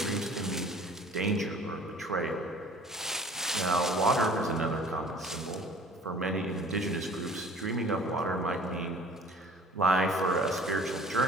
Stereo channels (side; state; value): both; normal; correlation 0.49